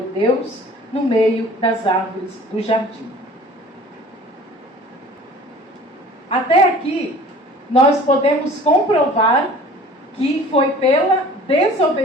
Deus no meio das árvores do jardim. Até aqui, nós podemos comprovar que foi pela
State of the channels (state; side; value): normal; both; correlation 0.46